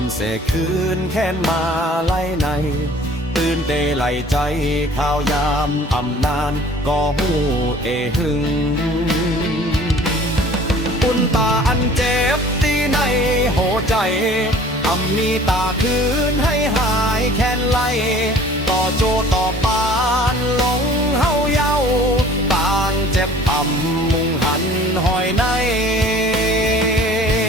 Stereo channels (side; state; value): both; normal; correlation 0.50